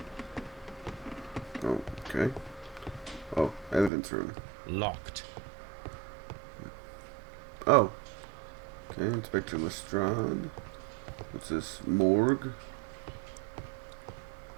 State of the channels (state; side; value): drops out; left; at 3.9 s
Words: Oh, okay. Oh, evidence room. Locked. Oh. Okay, Inspector Lestrade. What's this? Morgue?